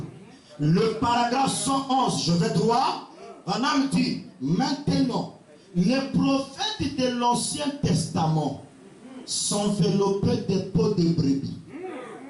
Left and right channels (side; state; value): both; identical; correlation 1.00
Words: Le paragraphe 111, je vais droit. Branham dit, maintenant, les prophètes de l'Ancien Testament s'enveloppaient des peaux de brebis.